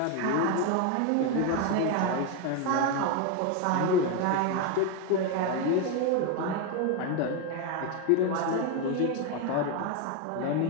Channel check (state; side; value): different; both; correlation 0.02